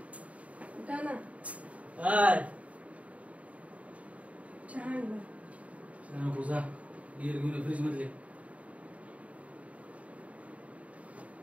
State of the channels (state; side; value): late; left; 0.067 ms